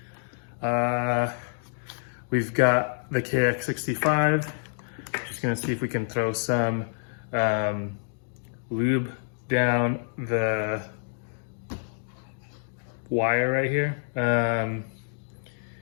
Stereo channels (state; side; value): silent; right; digital silence